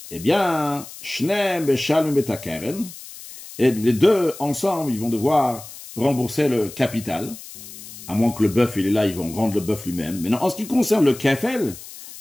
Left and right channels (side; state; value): left; noise; hiss, 15 dB below the sound